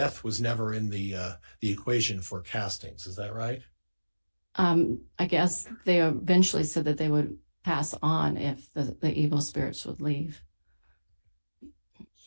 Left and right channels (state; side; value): inverted; both; correlation -1.00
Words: was never in the equation for castings. Is that right? I guess they eventually said that they would pass on if the evil spirits would leave.